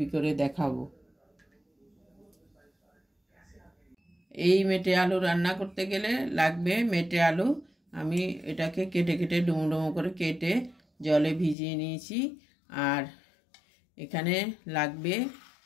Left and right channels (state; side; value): drops out; right; at 11.6 s